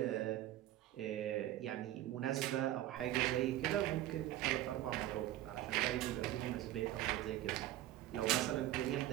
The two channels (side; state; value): left; quieter; 14.1 dB